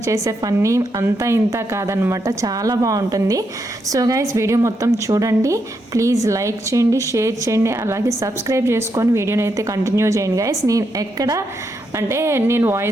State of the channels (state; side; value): normal; both; correlation 0.81